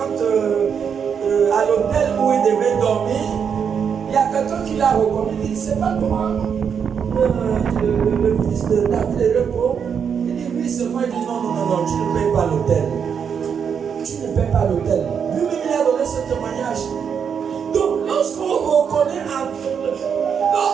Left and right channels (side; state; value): left; quieter; 7.1 dB